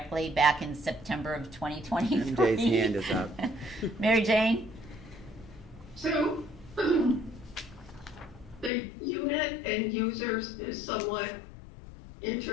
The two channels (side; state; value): right; drops out; at 8.7 s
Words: back in September of 2023? MJ's hand is up. Mary Jane? So, the unit and users is somewhat